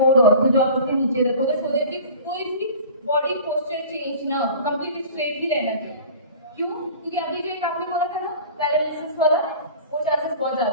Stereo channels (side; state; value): both; inverted; correlation -0.41